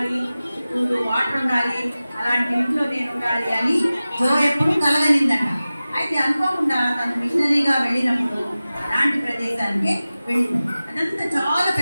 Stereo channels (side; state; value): both; inverted; correlation -0.96